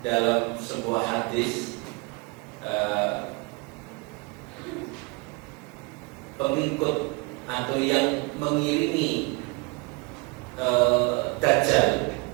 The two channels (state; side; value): quieter; left; 27.5 dB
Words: dalam sebuah hadis pengikut atau yang mengiringi Dajjal